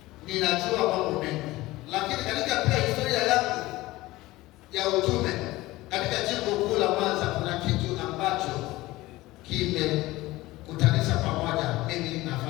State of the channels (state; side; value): quieter; right; 18.7 dB